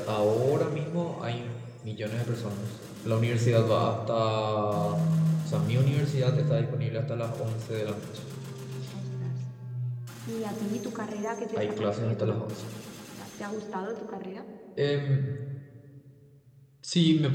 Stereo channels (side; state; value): both; identical; correlation 1.00